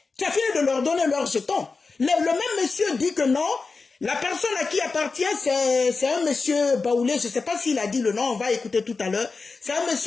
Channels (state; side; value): quieter; right; 4.3 dB